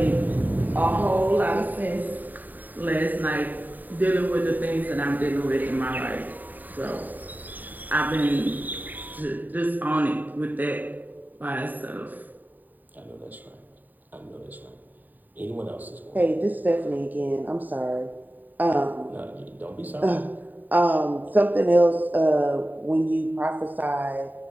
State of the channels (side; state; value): left; late; 0.086 ms